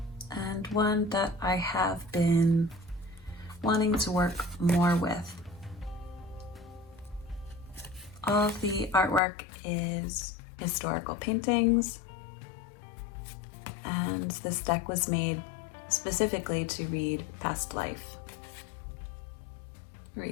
And one that I have been wanting to work more with. All of the artwork is historical paintings, and this deck was made specifically to read past life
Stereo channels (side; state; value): right; drops out; at 9.2 s